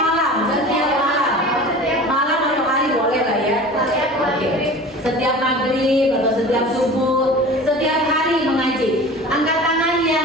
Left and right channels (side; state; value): both; normal; correlation 0.38